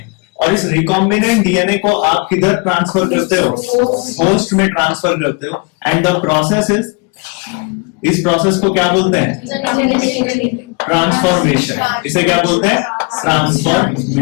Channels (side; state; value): right; quieter; 30.4 dB